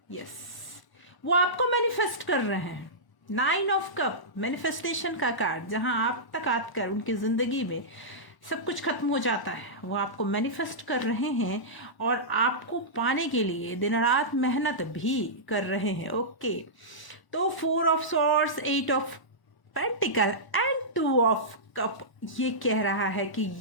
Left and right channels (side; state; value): right; late; 1.0 ms